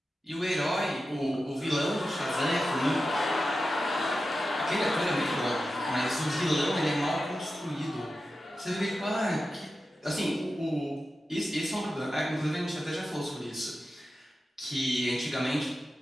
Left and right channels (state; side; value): normal; both; correlation 0.92